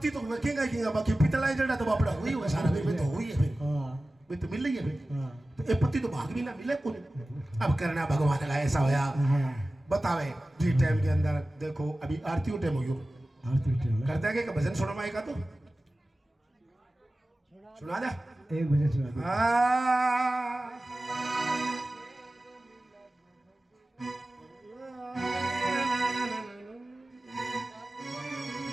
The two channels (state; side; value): normal; both; correlation 0.96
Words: तो वेखेगा किंगा बाकी पितला जड़ा तो बापड़ा हुई है सारा में तो हुई है फिर हाँ वे तो मिल रही है फिर हाँ तो ये पति तो भाग भी ना मिले कोनी अब करना भगवान का ऐसा होया हाँ बतावे जी टाइम के अंदर देखो अभी आरती टाइम हो गयो आरती टाइम है। करता है कि भजन सुना माई का तो सुना दे एक बजे सुना दो।